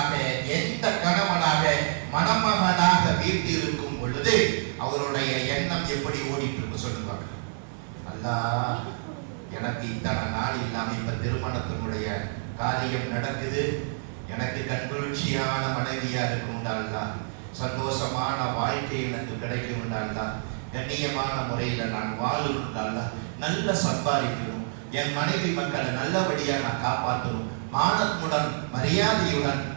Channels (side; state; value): left; silent; digital silence